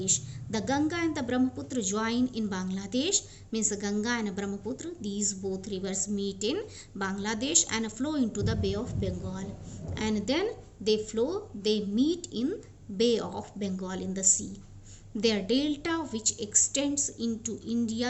The Ganga and the Brahmaputra join in Bangladesh. Means Ganga and Brahmaputra, these both rivers meet in Bangladesh and flow into the Bay of Bengal. And then they meet in Bay of Bengal in the sea. Their delta, which extends into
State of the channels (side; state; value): both; identical; correlation 1.00